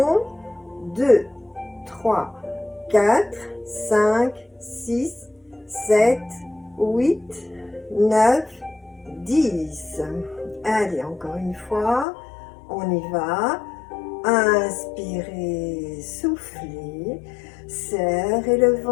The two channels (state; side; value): drops out; right; at 12.1 s